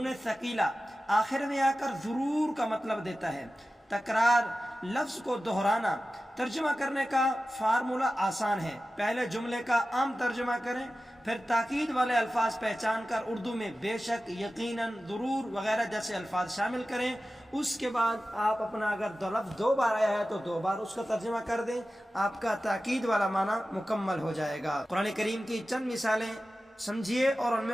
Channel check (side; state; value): both; normal; correlation 0.95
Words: ثقیلہ آخر میں آ کر ضرور کا مطلب دیتا ہے۔ تکرار، لفظ کو دہرانا۔ ترجمہ کرنے کا فارمولہ آسان ہے، پہلے جملے کا عام ترجمہ کریں، پھر تاکید والے الفاظ پہچان کر اردو میں بے شک، یقیناً، ضرور وغیرہ جیسے الفاظ شامل کریں۔ اس کے بعد آپ اپنا اگر لفظ 2 بار آیا ہے تو 2 بار اس کا ترجمہ کر دیں، آپ کا تاکید والا معنی مکمل ہو جائے گا۔ قرآن کریم کی چند مثالیں سمجھیے اور ان